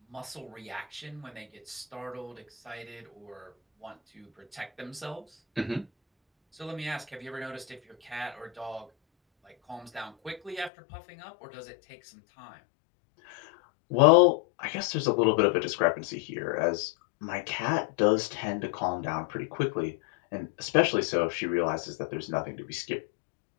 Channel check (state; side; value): drops out; right; at 10.7 s